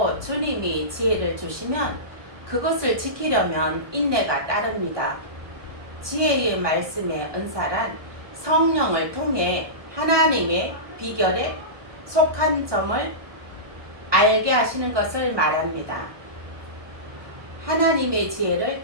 주님이 지혜를 주시면 그것을 지키려면 인내가 따릅니다. 지혜의 말씀의 은사란 성령을 통해 하나님의 비결에 속한 점을 알게 하시는 것을 말합니다. 하나님의 지혜를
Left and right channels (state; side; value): late; left; 1.2 ms